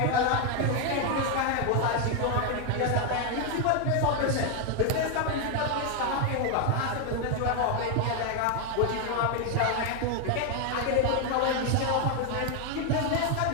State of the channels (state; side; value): different; both; correlation 0.01